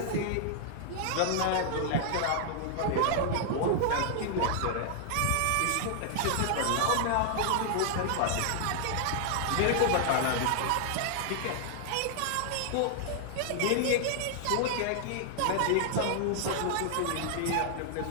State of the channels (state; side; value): different; both; correlation 0.00